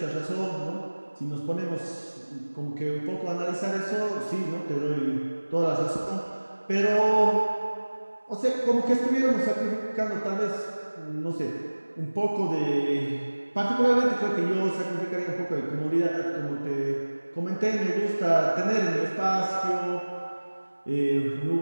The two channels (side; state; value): both; inverted; correlation -1.00